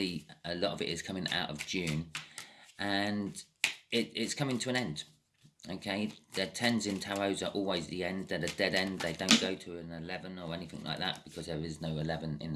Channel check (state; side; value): identical; both; correlation 1.00